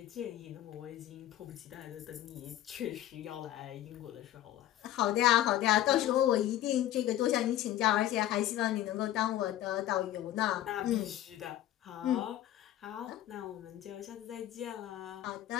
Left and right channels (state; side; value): quieter; right; 13.1 dB